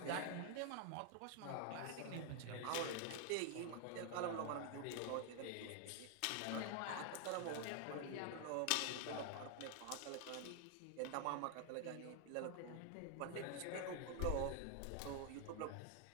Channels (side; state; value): both; different; correlation 0.00